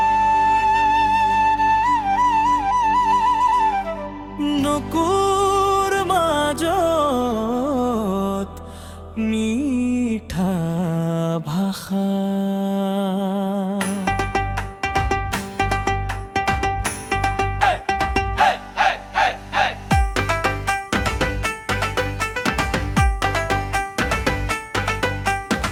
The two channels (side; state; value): both; identical; correlation 1.00